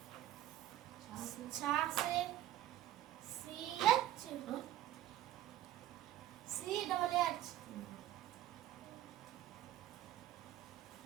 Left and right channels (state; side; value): quieter; left; 13.1 dB